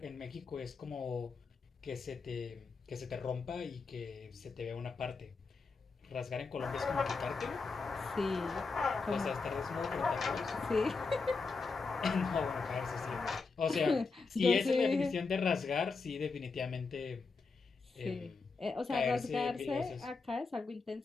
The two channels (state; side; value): quieter; right; 4.4 dB